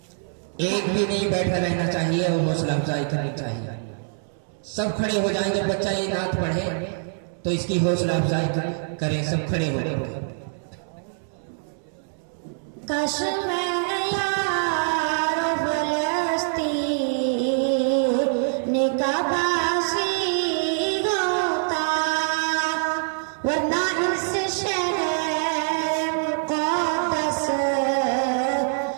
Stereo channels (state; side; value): silent; left; digital silence